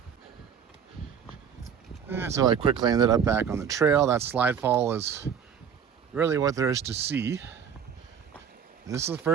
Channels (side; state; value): left; quieter; 7.6 dB